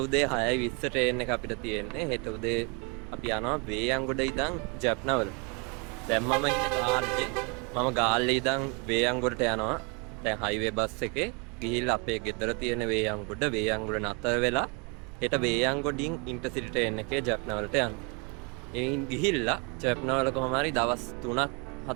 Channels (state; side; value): quieter; left; 32.7 dB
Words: උදේ 6:20 ට්‍රේන් එක අපිට තියෙන්නේ. හෙට උදේ අපි යනවා වේයන්ගොඩ ඉඳන් ජැප්නාවල. දැන් මම ඉන්නේ ගාල්ලේ. මම ගාල්ලේ ඉඳන් වේයන්ගොඩට යනවා. දැන් හයිවේ බස් එකේ ගිහිල්ලා අපේ ගෙදර තියෙන වේයන්ගොඩ නතර වෙලා හෙට වේයන්ගොඩින් ඉන්ටර්සිටි ට්‍රේන් එකේ ජැප්නාවලට යනවා. එයින් ගිහිල්ලා ජැප්නාවල කොහොම හරි දවස්